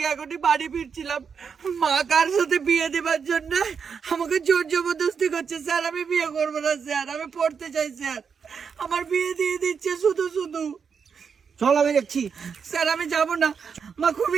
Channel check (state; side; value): quieter; left; 6.3 dB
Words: এখনই বাড়ি ফিরছিলাম। মা কার সাথে বিয়ে দেবার জন্য আমাকে জোর জবরদস্তি করছে। স্যার আমি বিয়ে করবো না স্যার, আমি পড়তে চাই স্যার। আমার বিয়ে দিয়ে দিচ্ছে শুধু শুধু। চল আমি দেখছি। স্যার আমি যাবো না, মা